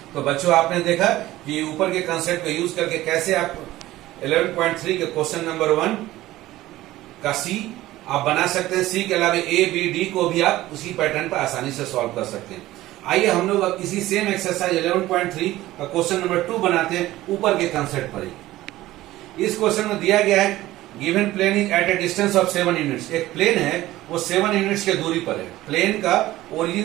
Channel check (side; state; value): left; quieter; 16.2 dB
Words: तो बच्चों आपने देखा कि ऊपर के कंसेप्ट को यूज करके कैसे आप 11.3 के क्वेश्चन नंबर 1 का सी आप बना सकते हैं। सी के अलावा ए बी डी को भी आप उसी पैटर्न पर आसानी से सॉल्व कर सकते हैं। आइए हम लोग अब इसी सेम एक्सरसाइज 11.3 का क्वेश्चन नंबर 2 बनाते हैं ऊपर के कंसेप्ट पर ही। इस क्वेश्चन में दिया गया है given plane is at a distance of 7 units. एक प्लेन है वो 7 यूनिट्स के दूरी पर है। प्लेन का